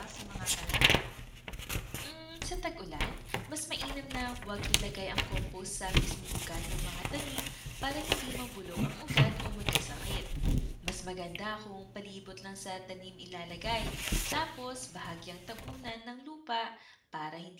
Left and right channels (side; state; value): both; identical; correlation 1.00